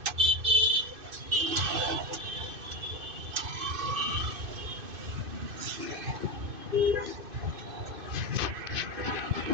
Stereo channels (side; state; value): left; late; 2.5 ms